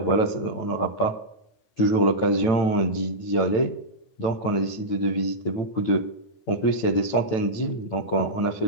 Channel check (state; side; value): late; right; 9.1 ms